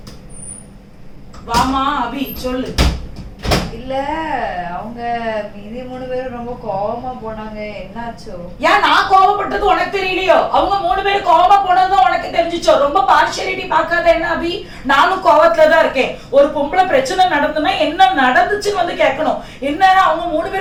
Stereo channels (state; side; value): identical; both; correlation 1.00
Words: வாமா அபி சொல்லு. இல்ல அவங்க மீதி 3 பேரும் ரொம்ப கோவமா போனாங்க, என்னாச்சோ? ஏன் நான் கோவப்பட்டது உனக்கு தெரியலையோ? அவங்க 3 பேரும் கோவமா போனதும் உனக்கு தெரிஞ்சுச்சோ? ரொம்ப பார்ஷியாலிட்டி பார்க்காத என்ன அபி? நானும் கோவத்துல தான் இருக்கேன். ஒரு பொம்பளை பிரச்சனை நடந்துன்னா என்ன நடந்துச்சுன்னு வந்து கேட்கணும். என்ன அவங்க 3